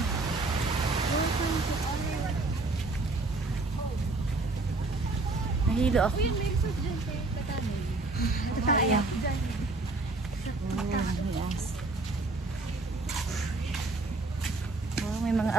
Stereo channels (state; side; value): quieter; left; 3.3 dB